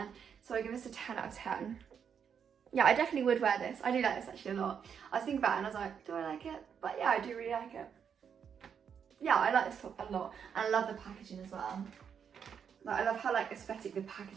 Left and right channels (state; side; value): quieter; left; 7.4 dB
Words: So I give this a 10 out of 10. Yeah, I definitely would wear this. I do like this actually a lot. I was thinking about it and I was like, do I like it? But yeah, I do really like it. Yeah, I like this top a lot. And I love the packaging as well. Like, I love how like aesthetic the